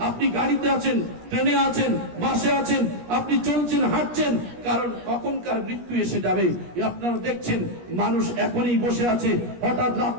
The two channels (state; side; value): late; left; 17 ms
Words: আপনি গাড়িতে আছেন, ট্রেনে আছেন, বাসে আছেন, আপনি চলছেন, হাঁটছেন, কারণ কখনকার মৃত্যু এসে যাবে। আপনারা দেখছেন মানুষ এখনই বসে আছে, হঠাৎ